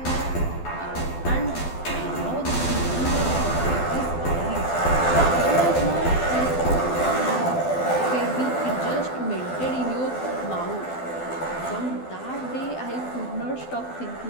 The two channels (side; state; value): right; late; 12 ms